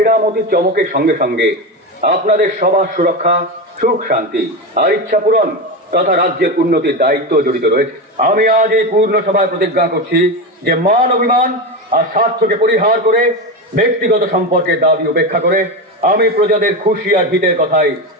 চমকের সঙ্গে সঙ্গে আপনাদের সবার সুরক্ষা, সুখ শান্তি আর ইচ্ছা পূরণ তথা রাজ্যের উন্নতির দায়িত্ব জড়িত রয়েছে। আমি আজ এই পূর্ণ সভায় প্রতিজ্ঞা করছি যে মান অভিমান আর স্বার্থকে পরিহার করে ব্যক্তিগত সম্পর্কের দাবি উপেক্ষা করে আমি প্রজাদের খুশি আর হিতের কথাই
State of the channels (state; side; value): normal; both; correlation 0.18